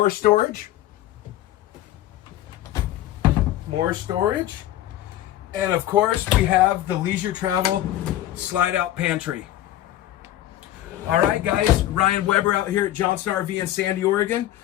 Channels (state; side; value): quieter; right; 13.6 dB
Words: storage, more storage. And of course, we have the leisure travel slide-out pantry. All right, guys, Ryan Weber out here at Johnson RV in Sandy, Oregon.